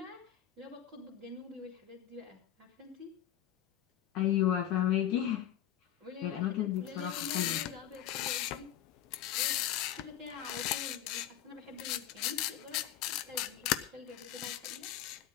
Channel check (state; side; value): quieter; right; 11.3 dB